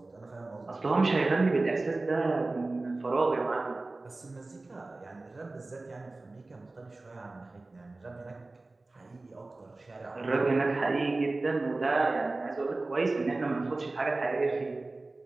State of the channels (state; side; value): quieter; left; 3.2 dB